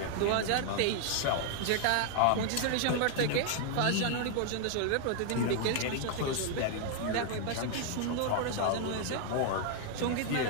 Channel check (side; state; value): both; different; correlation 0.00